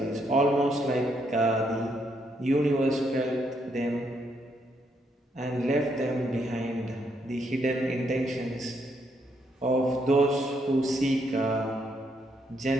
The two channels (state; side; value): normal; both; correlation 0.75